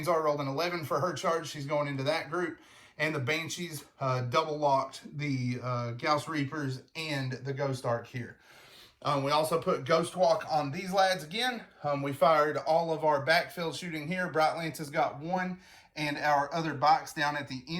R rolled an 11 for her charge. She's going into that group. And the Banshees double locked the Gauss Reapers and the Ghost Ark here. We also put Ghost Walk on these lads again. We fired all of our backfield shooting here. Bright Lances got 1, and our other bikes down at the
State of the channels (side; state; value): both; identical; correlation 1.00